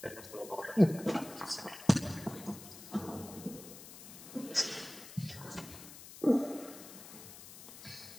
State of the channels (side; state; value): left; noise; hiss, 15 dB below the sound